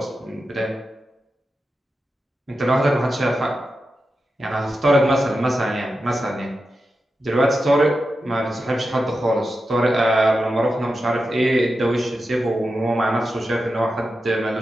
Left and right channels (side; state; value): both; normal; correlation 0.90